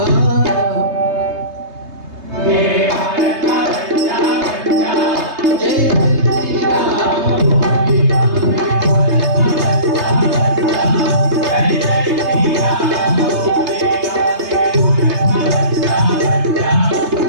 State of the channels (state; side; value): late; left; 3.3 ms